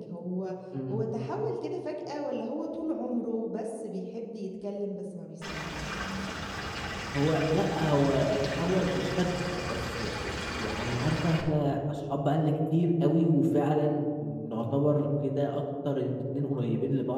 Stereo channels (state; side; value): identical; both; correlation 1.00